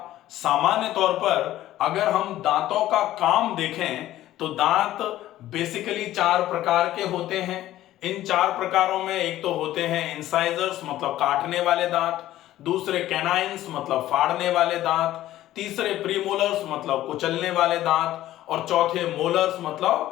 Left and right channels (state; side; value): quieter; right; 14.1 dB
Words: सामान्य तौर पर अगर हम दांतों का काम देखें तो दांत बेसिकली 4 प्रकार के होते हैं। इन 4 प्रकारों में एक तो होते हैं इंसाइजर्स मतलब काटने वाले दांत, दूसरे कैनाइन्स मतलब फाड़ने वाले दांत, तीसरे प्रीमोलर्स मतलब कुचलने वाले दांत, और चौथे मोलर्स